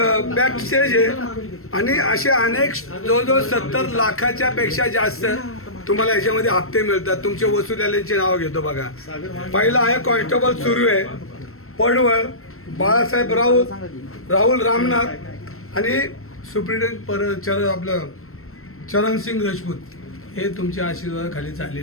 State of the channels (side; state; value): right; late; 0.62 ms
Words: स्टेज आहे आणि असे अनेक जवळजवळ 70 लाखाच्या पेक्षा जास्त तुम्हाला याच्यामध्ये हप्ते मिळतात. तुमचे वसुलीचे नाव घेतो बघा. पहिला आहे कॉन्स्टेबल सुरू आहे, पडवळ, बाळासाहेब राहुल रामनाथ आणि सुप्रिटेंडेंट आपलं चरणसिंग राजपूत. हे तुमच्या आशीर्वादाखाली